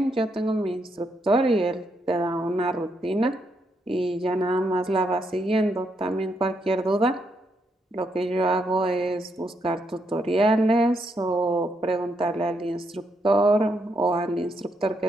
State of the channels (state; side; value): normal; both; correlation 0.78